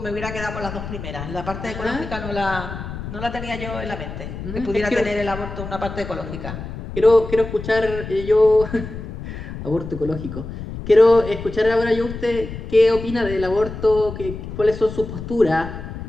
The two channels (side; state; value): left; noise; rumble, 9 dB below the sound